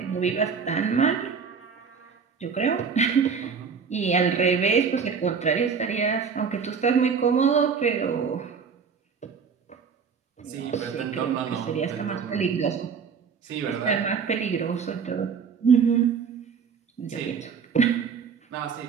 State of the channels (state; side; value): quieter; left; 6.0 dB